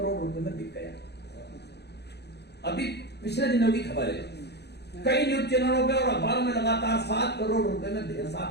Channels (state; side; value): late; right; 0.48 ms